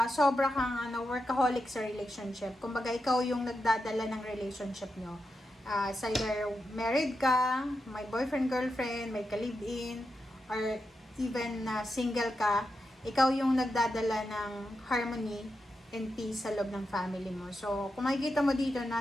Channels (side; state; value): both; normal; correlation 0.87